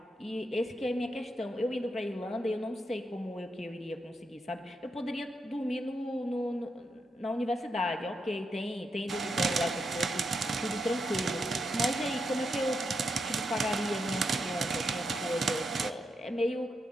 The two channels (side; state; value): both; normal; correlation 0.83